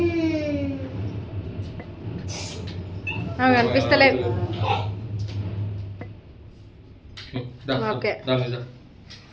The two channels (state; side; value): identical; both; correlation 1.00